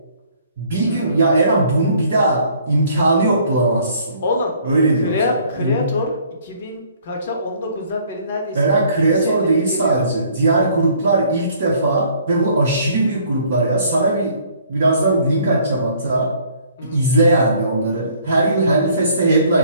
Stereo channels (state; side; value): inverted; both; correlation -0.59